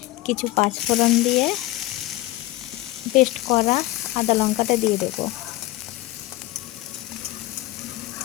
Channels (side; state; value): right; quieter; 17.5 dB